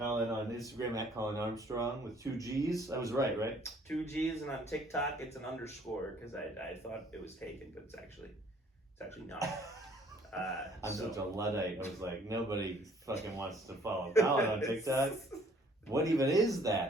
on Instagram at Colin Armstrong with 2 G's. I was right? 2 G's, and on TikTok it's an underscore because I thought it was taken, but it's actually not. I'm such a Luddite. I was like, nobody fucking wants to follow Colin on TikTok. What even is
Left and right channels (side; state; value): both; normal; correlation 0.59